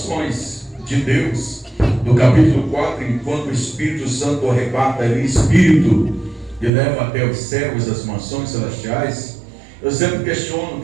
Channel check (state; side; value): drops out; left; at 6.7 s